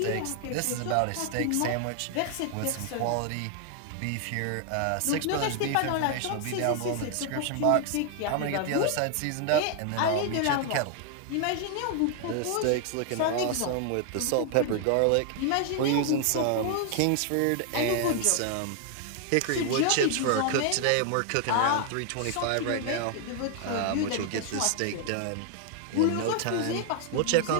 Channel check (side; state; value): both; different; correlation 0.00